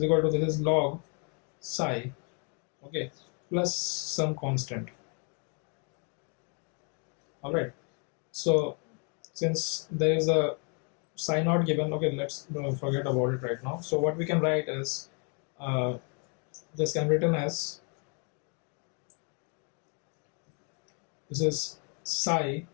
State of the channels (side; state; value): right; quieter; 37.3 dB